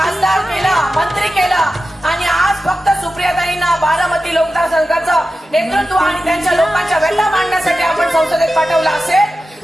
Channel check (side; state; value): both; normal; correlation 0.93